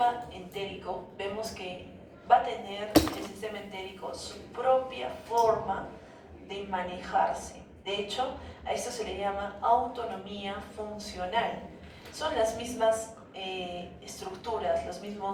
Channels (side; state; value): both; identical; correlation 1.00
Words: entérico, vemos que va a tener el sistema entérico su propia forma de manejarse. De hecho, a esto se le llama autonomía funcional. Son las mismas estructuras, los